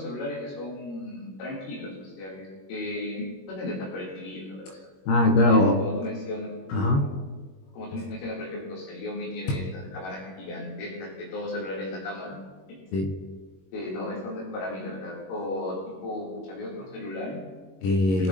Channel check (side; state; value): right; late; 21 ms